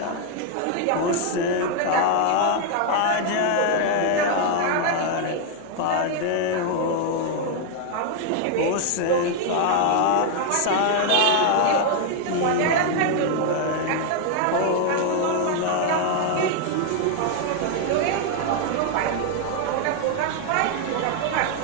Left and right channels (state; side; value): different; both; correlation 0.00